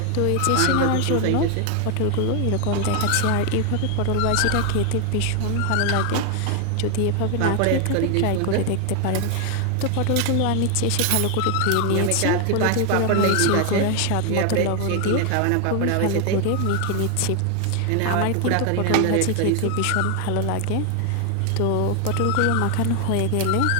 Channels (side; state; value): both; different; correlation 0.00